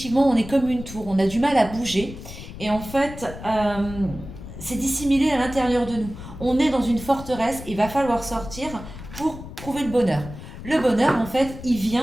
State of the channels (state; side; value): noise; left; rumble, 13 dB below the sound